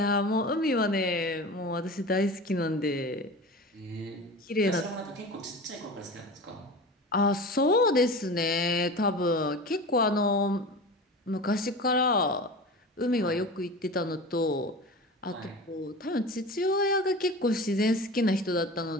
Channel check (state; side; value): normal; both; correlation 0.33